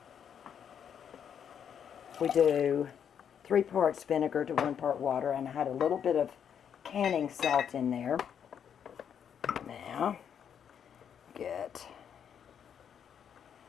We do 3 parts vinegar to 1 part water, and I had a little bit of canning salt in there. Now, get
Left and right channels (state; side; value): quieter; right; 8.2 dB